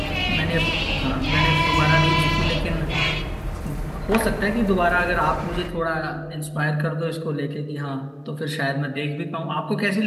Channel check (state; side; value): identical; both; correlation 1.00